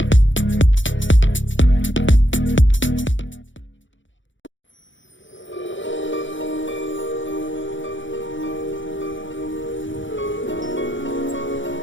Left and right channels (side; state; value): right; late; 0.55 ms